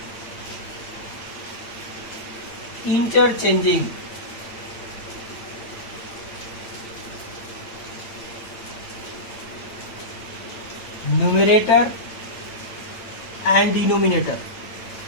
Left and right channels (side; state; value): right; late; 8.7 ms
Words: interchanging numerator and denominator.